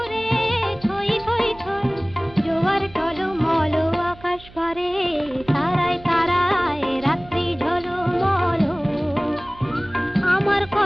ছই ছই ছই জোয়ার টলমল। আকাশ পারে তারায় তারায় রাত্রি ঝলমল। আমার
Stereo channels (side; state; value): right; noise; hum, 21 dB below the sound